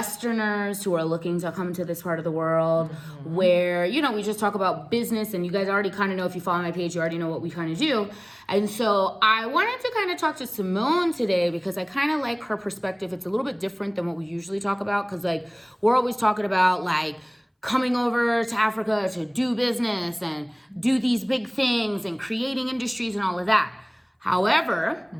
who are looking to come to this part of the world, where, you know, we just talk about business, and you guys already kind of know, if you follow my page, you already know what we kind of do. And so I wanted to kind of talk to Simone today because I kind of like her perspective. It's a little bit different than what we usually talk about, because like we're always talking about like coming over to Africa to do business and do these big things and creating industries and all of that. However,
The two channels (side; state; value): both; identical; correlation 1.00